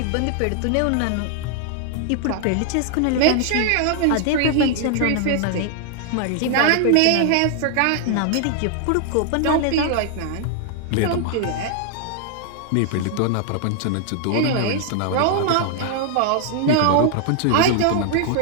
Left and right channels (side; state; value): both; different; correlation 0.00